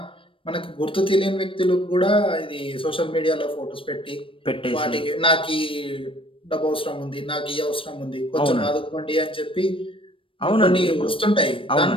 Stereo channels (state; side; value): late; right; 0.25 ms